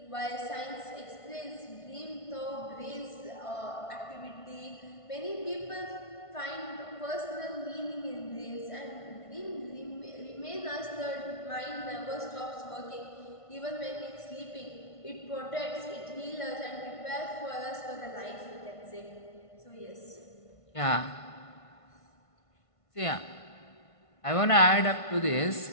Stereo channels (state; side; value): late; right; 1.5 ms